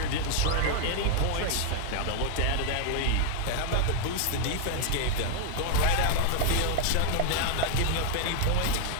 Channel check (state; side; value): different; both; correlation 0.00